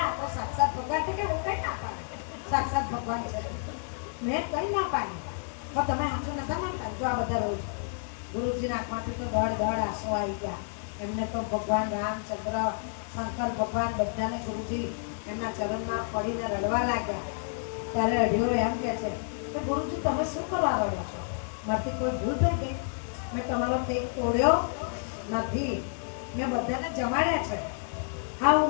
તો સાક્ષાત ભગવાન છે. કે હું કઈ ના પાડું, સાક્ષાત ભગવાન છે મેં કઈ ના પાડ્યું, પણ તમે સાચું નતા માનતા. જો આ બધા રોજ ગુરુજીના આંખમાંથી તો દોડ આંસુ આવી ગયા. એમને તો ભગવાન રામચંદ્ર, શંકર ભગવાન બધાને ગુરુજી એમના ચરણમાં પડીને રડવા લાગ્યા. ત્યારે અઢિયો એમ કે છે કે ગુરુજી તમે શું કરવા રડો છો, મારાથી કોઈ ભૂલ થઈ ગઈ? મેં તમારો ટેક તોડ્યો નથી, મેં બધાને જમાડ્યા છે. હા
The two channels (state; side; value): silent; right; digital silence